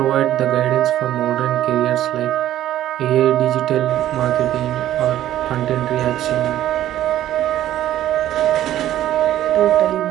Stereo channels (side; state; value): left; quieter; 12.8 dB